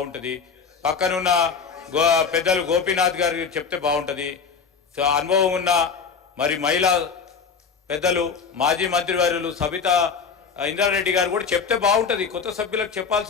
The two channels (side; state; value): right; quieter; 5.8 dB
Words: పక్కనున్న పెద్దలు గోపీనాథ్ గారు చెప్తే బాగుంటుంది, అనుభవం ఉన్న మరి మహిళా పెద్దలు మాజీ మంత్రివర్యులు సబితా ఇంద్రారెడ్డి గారు కూడా చెప్తే బాగుంటుంది. కొత్త సభ్యులకు